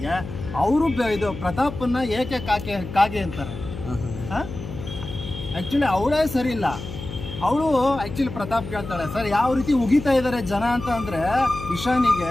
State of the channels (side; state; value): left; noise; hum, 10 dB below the sound